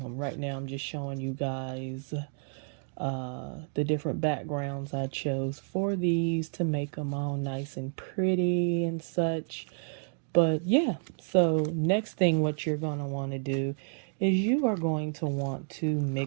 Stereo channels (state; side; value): silent; left; 58 dB below the other